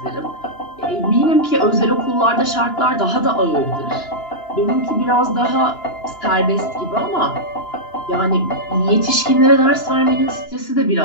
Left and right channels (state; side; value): late; right; 2.9 ms